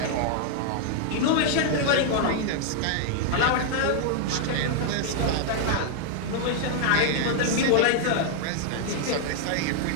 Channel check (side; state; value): both; different; correlation 0.00